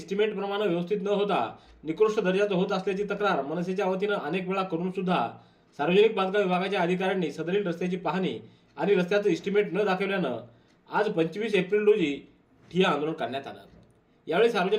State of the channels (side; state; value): both; identical; correlation 1.00